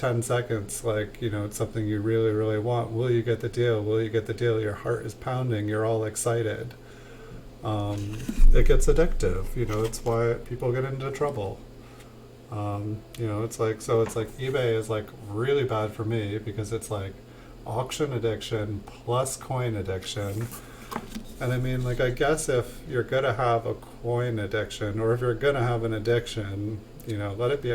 seconds, like, it's something you really, really want. Will you get the deal? Will you get the deal? Your heart is pounding. You're all excited. It gets addictive. It's why people get into trouble. It's like, so it's like eBay is like really bad for me because it's like auction addiction plus coin addiction. And I mean, like, I guess if you're gonna have a coin addiction, or if you're gonna have an addiction, let it be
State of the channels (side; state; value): both; identical; correlation 1.00